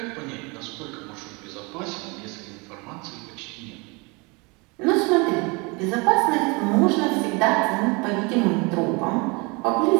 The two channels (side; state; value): left; quieter; 28.5 dB